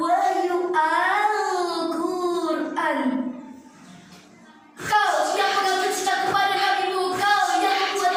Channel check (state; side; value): identical; both; correlation 1.00